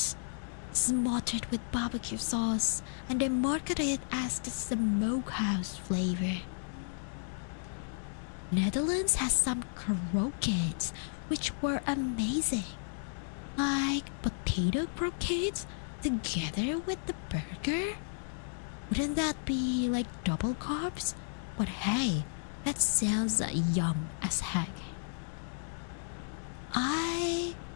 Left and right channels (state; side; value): silent; right; digital silence